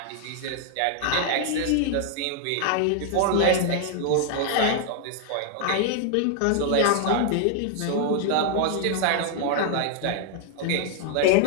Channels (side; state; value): both; different; correlation 0.00